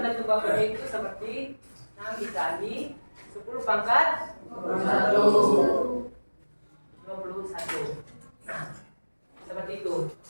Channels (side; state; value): both; inverted; correlation -1.00